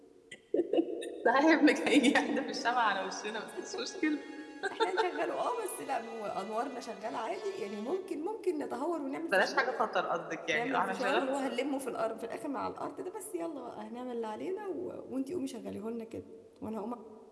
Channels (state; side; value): identical; both; correlation 1.00